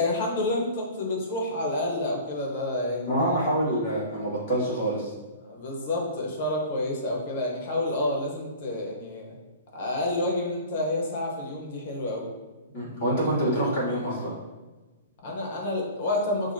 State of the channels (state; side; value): inverted; both; correlation -0.40